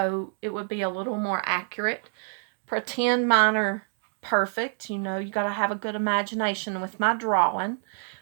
it would be a little more accurate. Pretend mine are perfect. You know, you got to have a good imagination with my drawing.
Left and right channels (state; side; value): silent; left; digital silence